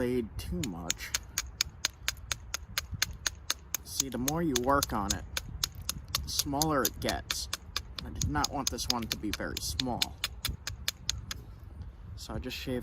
too much. See, the more you work on it, the smaller it gets. I did not want this one to be very small. So I just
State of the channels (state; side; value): identical; both; correlation 1.00